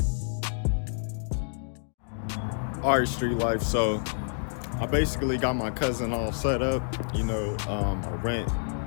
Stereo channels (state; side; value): silent; right; digital silence